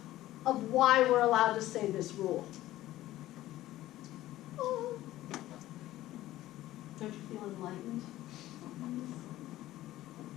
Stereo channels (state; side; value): quieter; right; 15.2 dB